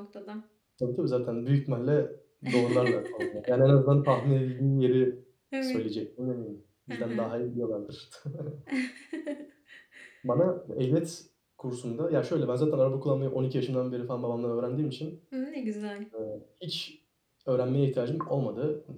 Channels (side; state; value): both; identical; correlation 1.00